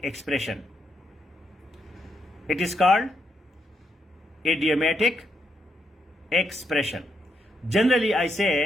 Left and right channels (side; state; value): both; normal; correlation 0.79